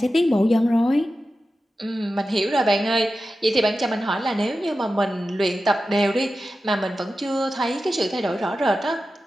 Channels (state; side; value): normal; both; correlation 0.93